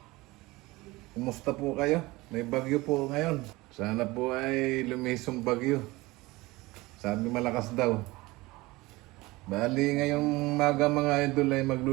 Kumusta po kayo? May bagyo po ngayon. Sana po ay lumisong bagyo. Sabi malakas daw. Bali ngayong maga mga idol ay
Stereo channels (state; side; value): quieter; left; 21.1 dB